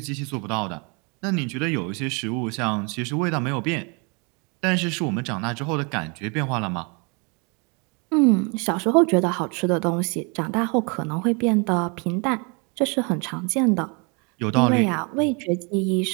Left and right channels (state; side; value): quieter; left; 32.6 dB